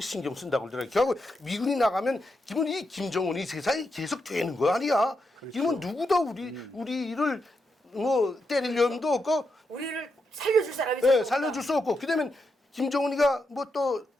신경 쓴다고 그러더라고요. 결국 미군이 나가면 기본 이 김정은이 세상이 계속 되는 거 아니야. 기본 누구도 우리를 뭐 때리려면도 없고 우리를 살려줄 사람이 예, 살려줄 수 없고 그다음에 김정은이가 뭐 또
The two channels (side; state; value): both; normal; correlation 0.84